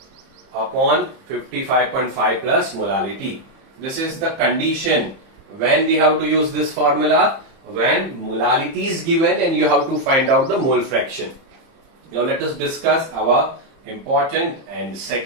upon 55.5 plus molality. This is the condition when we have to use this formula, when molality is given and you have to find out the mole fraction. Now let us discuss our important and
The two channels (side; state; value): left; late; 30 ms